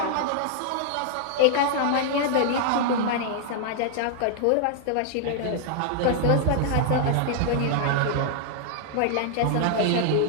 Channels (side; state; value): both; different; correlation 0.00